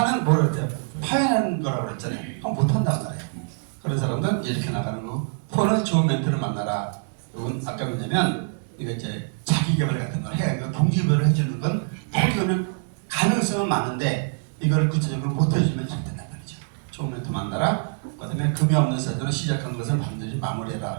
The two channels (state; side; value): silent; left; 62 dB below the other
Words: 뭐라 그랬대요? 파해하는 거라고 그랬잖아요. 그럼 못한단 말이에요. 그런 사람들은 이렇게 나가는 거고. 포는 좋은 멘트를 만나라. 이건 아까 뭐냐면 이거 이제 자기 개발 같은 걸 해야 동기부여를 해주는 건 포기는 가능성은 많은데 이걸 구체적으로 못 해주면 잘 된단 말이죠. 좋은 멘트 만나라. 그다음에 금이 없는 사주는 시작한 것을 반드시